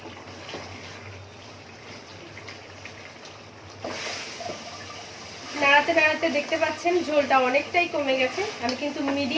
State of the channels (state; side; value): identical; both; correlation 1.00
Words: নাড়াতে নাড়াতে দেখতে পাচ্ছেন ঝোলটা অনেকটাই কমে গেছে। আমি কিন্তু